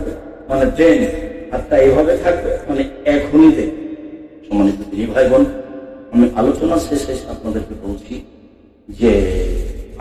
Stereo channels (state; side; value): identical; both; correlation 1.00